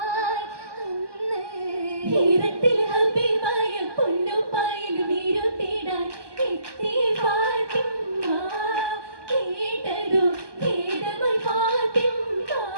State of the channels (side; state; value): left; late; 1.2 ms